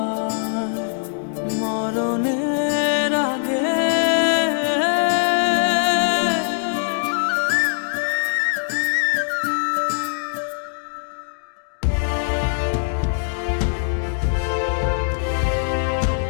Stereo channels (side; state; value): right; silent; digital silence